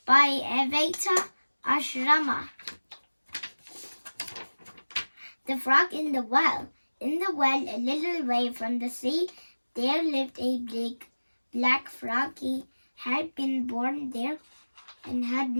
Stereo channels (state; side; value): inverted; both; correlation -1.00